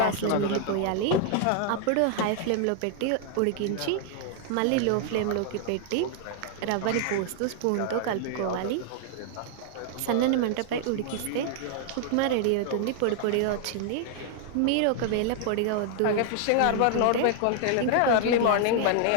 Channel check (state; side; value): different; both; correlation 0.00